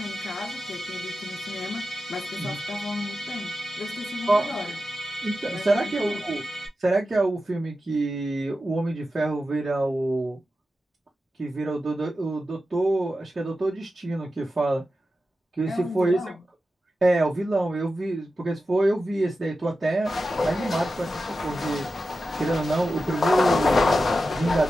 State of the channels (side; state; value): both; normal; correlation 0.92